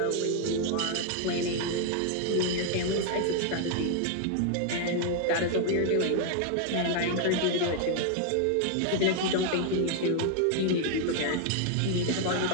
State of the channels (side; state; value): both; different; correlation 0.00